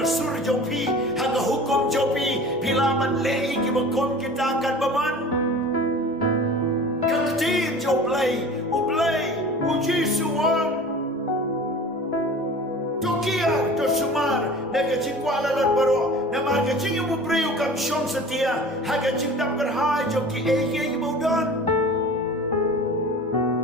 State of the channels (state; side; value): normal; both; correlation 0.40